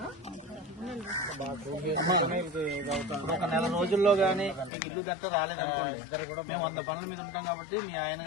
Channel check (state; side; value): drops out; right; at 4.7 s